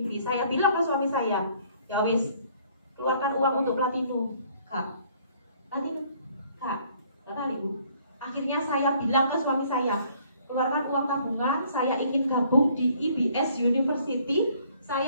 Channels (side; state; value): both; inverted; correlation -0.61